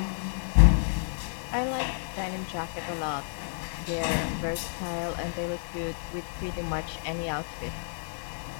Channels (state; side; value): silent; right; 58 dB below the other